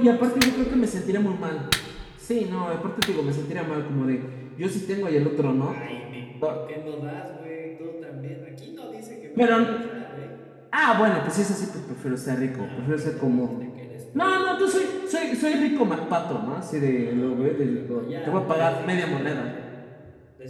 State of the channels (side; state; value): both; identical; correlation 1.00